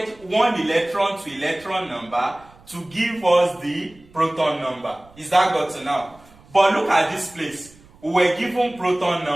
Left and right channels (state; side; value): noise; right; rumble, 26 dB below the sound